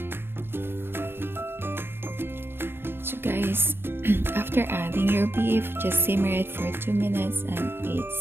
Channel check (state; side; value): late; left; 0.11 ms